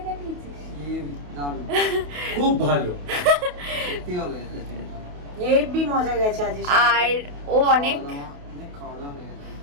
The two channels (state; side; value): late; left; 28 ms